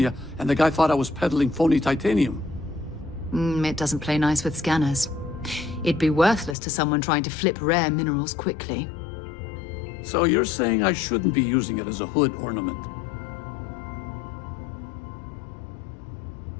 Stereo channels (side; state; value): right; drops out; at 6.6 s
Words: and the guy thought I was peddling phony titanium. It doesn't play nice with scanners. It'd be worthless to someone trying to flip rare minerals quickly. So you're saying I shouldn't be using it as a hood ornament?